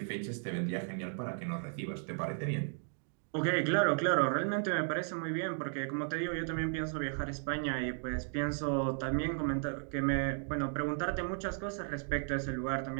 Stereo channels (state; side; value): silent; left; 54 dB below the other